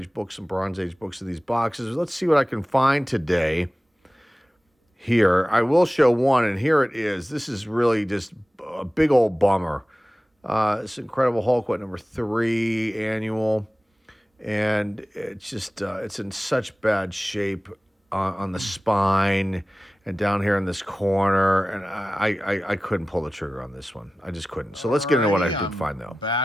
books and Bronze Age books in these boxes. Let's see what I can find today. Here, I will show one, and here it is. This is really just a big old bummer. This Incredible Hulk, number 3 annual, and it's just it's in such bad shape on the spine and down here in this corner, and I couldn't pull the trigger on this one. I just couldn't. So let's get into what I did find, though.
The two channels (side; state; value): both; normal; correlation 0.96